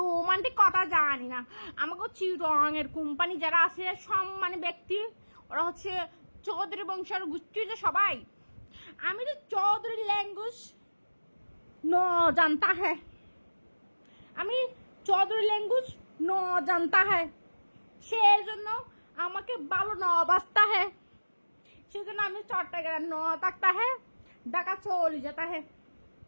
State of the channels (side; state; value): both; inverted; correlation -1.00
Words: কথা জানি না। আমাকে চিটুয়াংয়ের কোম্পানি যারা আছে সম্মানী ব্যক্তি, ওরা হচ্ছে চৌধুরী বংশের গোষ্ঠী যে সবাই। আমি তো চৌধুরী ল্যাঙ্গুয়েজ ন জানতা হ্যাঁ, আমি চৌধুরী ল্যাঙ্গুয়েজ ন জানতা হ্যাঁ, সেই জন্য আমাকে ভালো ন বাঁচতা হ্যাঁ, সেই জন্য আমি চট্টগ্রাম ন থাকতা হ্যাঁ, ঢাকা চলে যেতা হ্যাঁ।